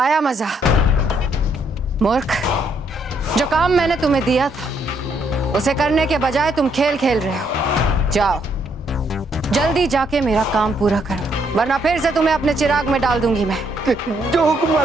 मजा? मूर्ख, जो काम मैंने तुम्हें दिया था उसे करने के बजाय तुम खेल खेल रहे हो। जाओ जल्दी जाके मेरा काम पूरा करो, वरना फिर से तुम्हें अपने चिराग में डाल दूंगी मैं। जो हुकुम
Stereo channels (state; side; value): normal; both; correlation 0.72